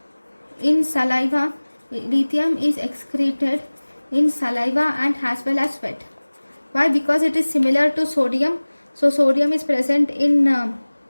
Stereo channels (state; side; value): inverted; both; correlation -1.00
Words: in saliva. Lithium is excreted in saliva and as well as sweat. Why? Because it is similar to sodium. So sodium is present in